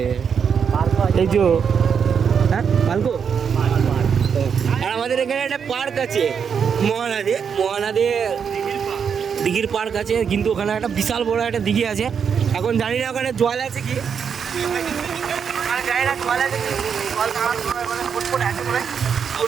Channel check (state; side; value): quieter; left; 6.9 dB